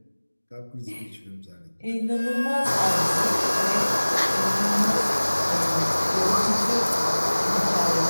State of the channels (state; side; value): inverted; both; correlation -1.00